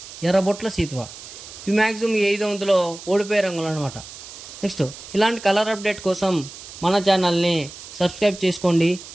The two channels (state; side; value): noise; right; hiss, 15 dB below the sound